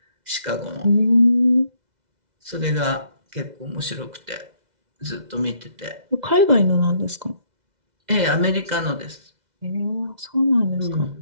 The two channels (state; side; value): late; left; 2.0 ms